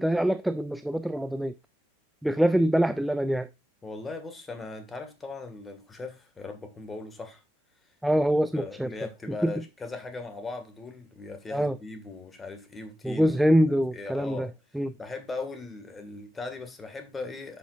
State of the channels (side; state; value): both; normal; correlation 0.95